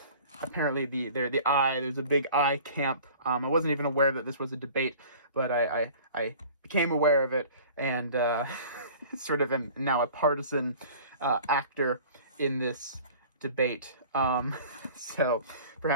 apparently there's a big I camp. I wasn't even aware that this was a debate, but I became aware of it, and sort of am now a partisan actor in this debate. So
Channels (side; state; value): both; inverted; correlation -0.44